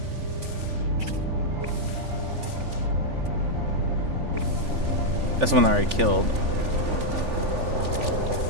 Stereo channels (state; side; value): late; left; 3.4 ms